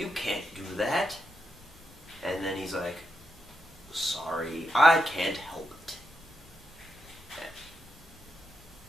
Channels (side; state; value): both; normal; correlation 0.86